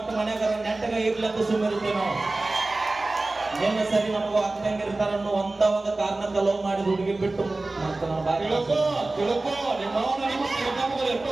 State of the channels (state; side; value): quieter; left; 3.1 dB